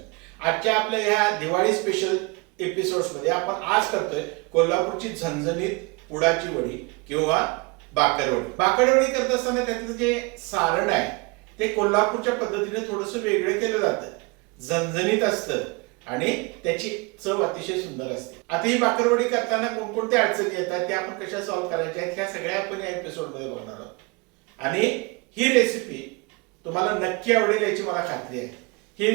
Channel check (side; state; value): left; quieter; 28.0 dB